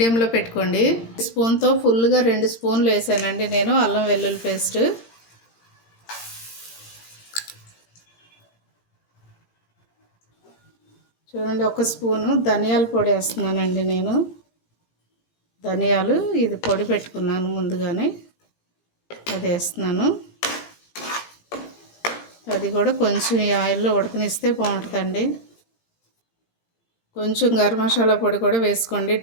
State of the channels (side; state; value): right; late; 18 ms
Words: పెట్టుకోండి. స్పూన్తో ఫుల్గా 2 స్పూన్లు వేసానండి నేను అల్లం వెల్లుల్లి పేస్ట్. చూడండి, 1 స్పూను ధనియాల పొడి వేస్తున్నానండి నేను. ధనియాలు ఇది పొడి పెట్టుకున్నాను ముందుగానే, అది వేస్తున్నాను. అది కూడా కొంచెం ఈ ఆయిల్లో ఉడకనిస్తే బాగుంటుందండి. కొంచెం గరం మసాలా పొడి కూడా వేసుకోండి,